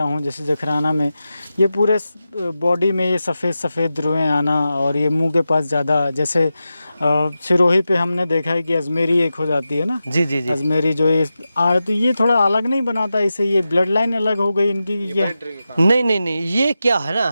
हूँ, जैसे जखराना में ये पूरे बॉडी में ये सफ़ेद रुएं आना, और ये मुंह के पास ज़्यादा, जैसे सिरोही पे हमने देखा है कि अजमेरी एक हो जाती है ना। जी जी जी, अजमेरी जो ये तो ये थोड़ा अलग नहीं बनाता इसे, ये ब्लड लाइन अलग हो गई इनकी, ये नहीं, ये क्या है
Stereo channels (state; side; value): inverted; both; correlation -0.92